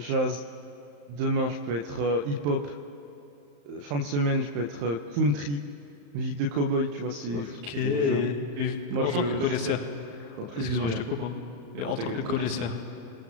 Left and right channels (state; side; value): late; left; 34 ms